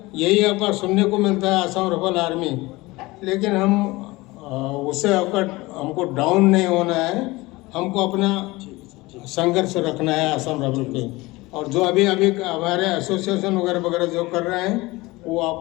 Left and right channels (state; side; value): quieter; right; 21.3 dB